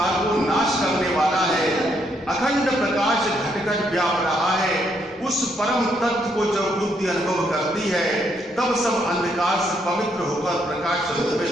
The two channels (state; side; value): normal; both; correlation 0.74